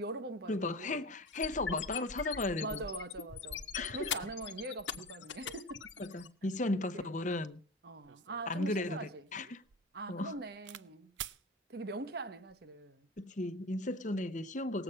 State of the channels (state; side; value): normal; both; correlation 0.31